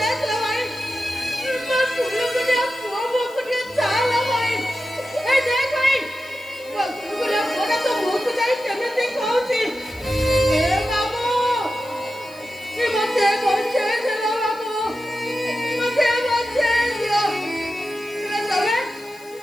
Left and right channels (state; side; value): noise; left; hiss, 24 dB below the sound